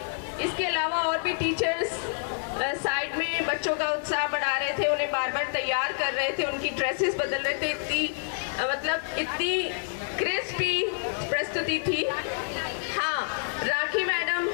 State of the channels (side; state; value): right; silent; digital silence